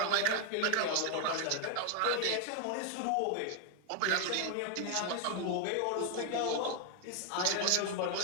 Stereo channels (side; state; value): both; different; correlation 0.01